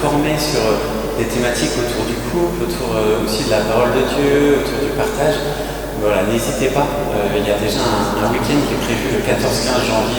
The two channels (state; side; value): identical; both; correlation 1.00